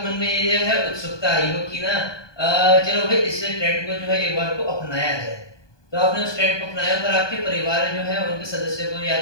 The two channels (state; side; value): late; right; 1.2 ms